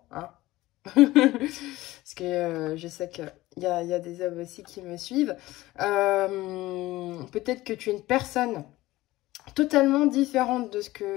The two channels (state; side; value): quieter; right; 17.8 dB